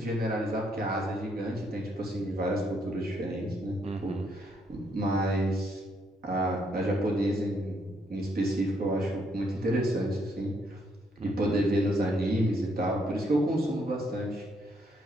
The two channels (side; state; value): both; normal; correlation 0.73